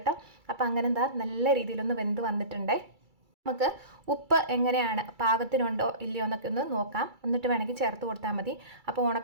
അപ്പോൾ അങ്ങനെ നല്ല രീതിയിലൊന്ന് വെന്ത് വന്നിട്ടുണ്ടേ. നമുക്ക് ഉപ്പ് എങ്ങനെയാണ് പാകത്തിനുണ്ടോ ഇല്ലയോ എന്നൊക്കെ ഒന്ന് നോക്കാം. എന്നിട്ട് വേണമെങ്കിൽ ചേർത്ത് കൊടുത്താൽ മതി. അപ്പോൾ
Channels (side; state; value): left; late; 2.3 ms